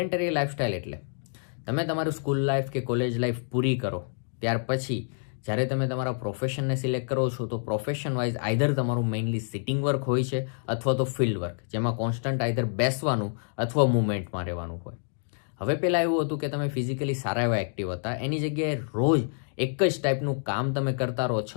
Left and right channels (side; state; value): right; silent; digital silence